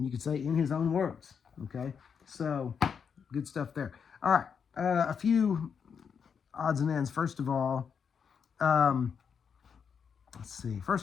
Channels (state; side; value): quieter; right; 6.7 dB